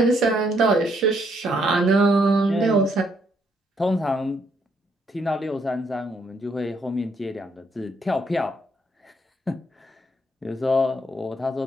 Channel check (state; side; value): normal; both; correlation 0.72